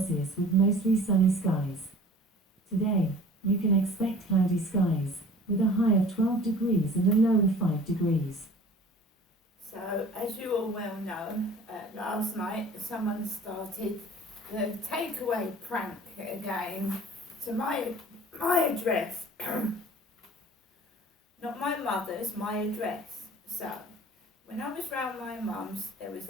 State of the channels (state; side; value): normal; both; correlation 0.46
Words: with mostly sunny skies. Today, you can expect cloudy skies, with a high of 12 degrees and a low of 5 degrees. So, as you all well know, last night someone started the takeaway prank again to my address. Not my mother's, my address. So, when I was round my mum's, there was